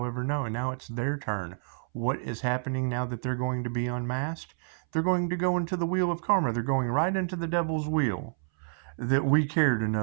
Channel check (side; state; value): left; silent; 59 dB below the other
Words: no, and now it's their turn. What is happening now that they're going to be unmasked? They're going to go into the wheel of karma. They're going right into the devil's wheel that we cared